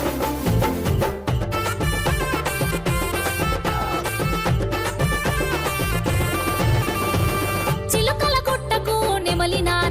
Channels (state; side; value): identical; both; correlation 1.00